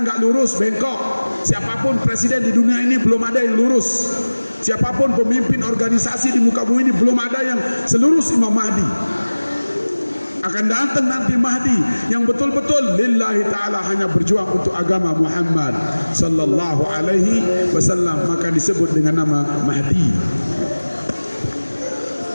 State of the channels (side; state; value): both; inverted; correlation -1.00